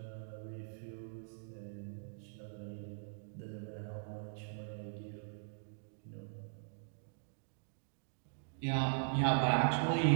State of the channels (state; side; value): silent; left; digital silence